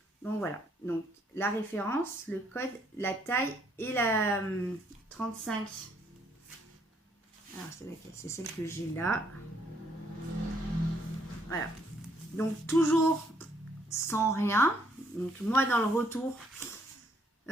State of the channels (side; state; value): both; normal; correlation 0.69